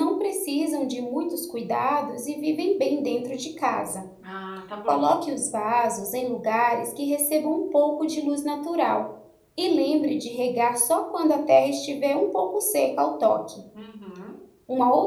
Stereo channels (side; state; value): both; identical; correlation 1.00